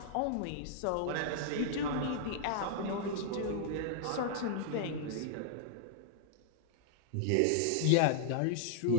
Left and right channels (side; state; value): both; different; correlation -0.01